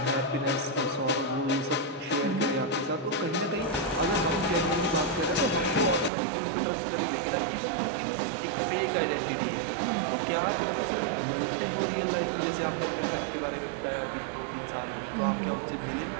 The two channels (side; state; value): left; drops out; at 6.1 s